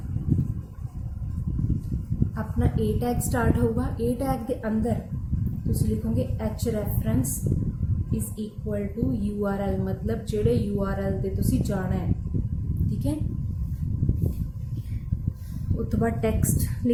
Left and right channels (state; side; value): identical; both; correlation 1.00